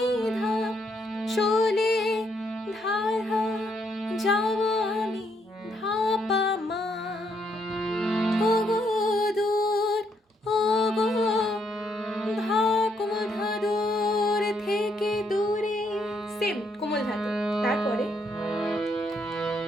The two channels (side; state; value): both; normal; correlation 0.74